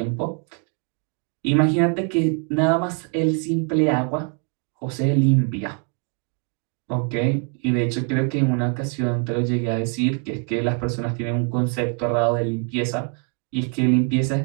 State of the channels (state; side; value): quieter; left; 39.6 dB